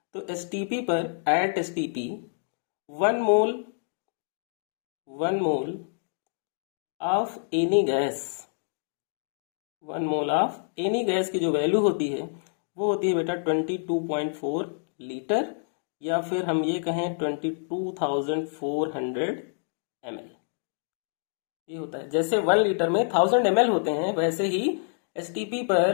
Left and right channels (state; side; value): silent; right; digital silence